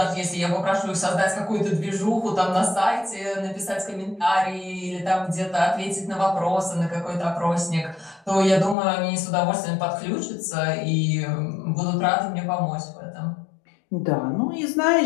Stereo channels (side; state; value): right; drops out; at 8.8 s